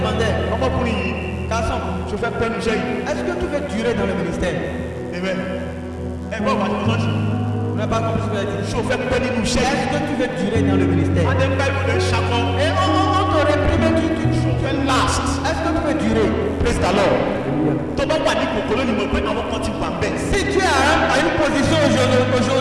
ọmọkùnrin yìí garçon, ṣe fẹ́ pẹ́ níṣẹ́ yìí. est-ce que tu veux durer dans le ministère? Amen. ẹ gbọ́ bàbá tó lọ́sí. On n'a pas compris ce qu'il a dit. ṣé o fẹ́ pẹ́ nínú iṣẹ́ yìí. Est-ce que tu veux durer dans le ministère? adé ń bá ìwé ṣakọ. Et on te réprime, tu fẹ́ last. est-ce que tu veux durer? praise the lord. tó bá wà ní kòkòrò ni mo pé àwọn kan ti wà bẹ́ẹ̀. Si tu es à une position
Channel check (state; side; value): identical; both; correlation 1.00